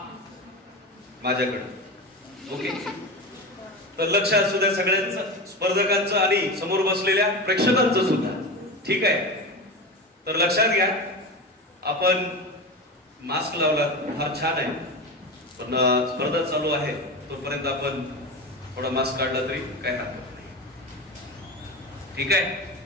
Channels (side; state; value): both; normal; correlation 0.24